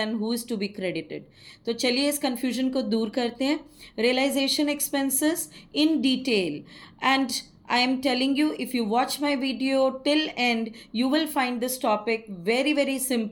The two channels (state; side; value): identical; both; correlation 1.00